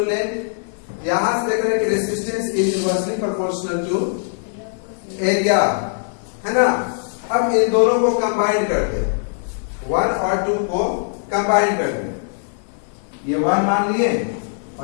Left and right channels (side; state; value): right; silent; 56 dB below the other